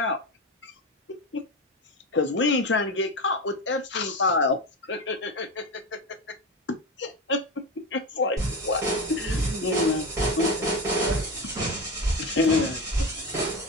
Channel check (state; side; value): normal; both; correlation 0.21